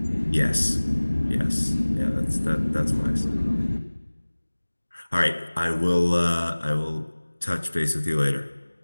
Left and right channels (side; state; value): both; inverted; correlation -1.00